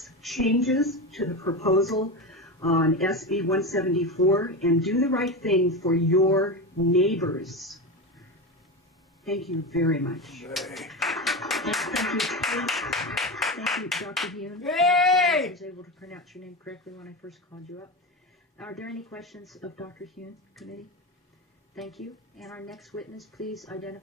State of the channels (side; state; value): both; normal; correlation 0.20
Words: changes to the proposal on SB 174 and do the right thing for your neighbors. Thank you very much. Thank you, Dr. Hune. Yay! I was able to pronounce your name correctly when I first called you up. Are there any questions of Dr. Hune, committee? Thank you. And our next witness, please